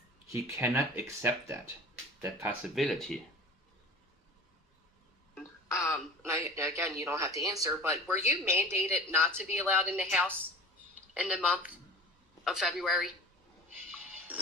He cannot accept that possibility. Again, you don't have to answer, but were you mandated not to be allowed in the house in the month of February?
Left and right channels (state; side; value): normal; both; correlation 0.38